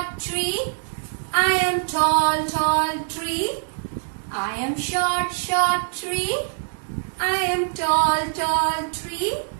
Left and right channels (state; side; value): silent; left; digital silence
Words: tree. I am tall, tall tree. I am short, short tree. I am tall, tall tree.